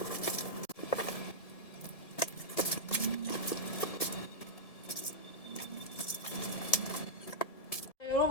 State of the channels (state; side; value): late; right; 1.7 ms